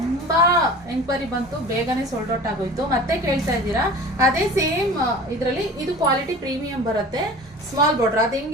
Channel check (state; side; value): normal; both; correlation 0.39